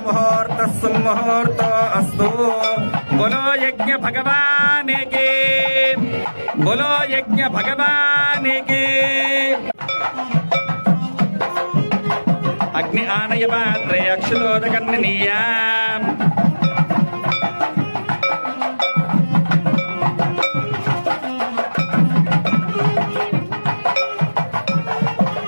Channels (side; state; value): both; inverted; correlation -1.00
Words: ముహూర్త సుముహూర్తో అస్తు. బోలో యజ్ఞ భగవానికి, బోలో యజ్ఞ భగవానికి. అగ్ని ఆనయ పాత్రే అక్షులోదకర్ణనీయా.